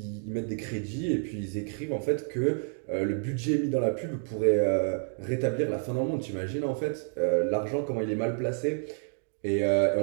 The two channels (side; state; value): left; silent; 58 dB below the other